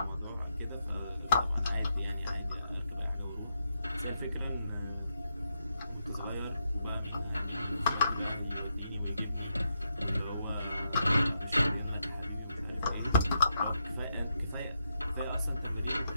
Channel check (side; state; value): both; inverted; correlation -0.81